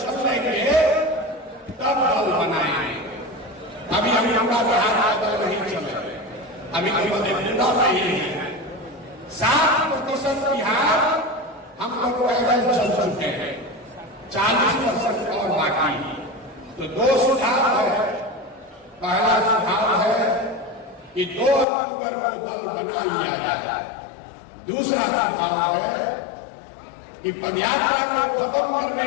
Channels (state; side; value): drops out; right; at 21.7 s